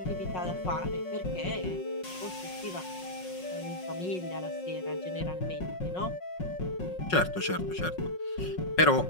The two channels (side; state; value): right; late; 5.5 ms